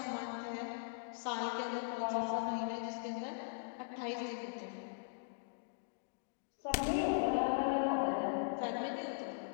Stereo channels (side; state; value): right; silent; digital silence